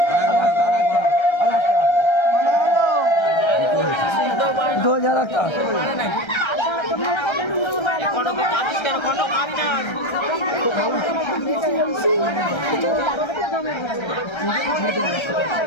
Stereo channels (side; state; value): right; late; 1.3 ms